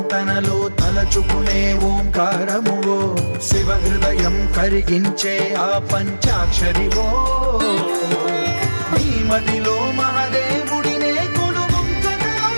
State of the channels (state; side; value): inverted; both; correlation -1.00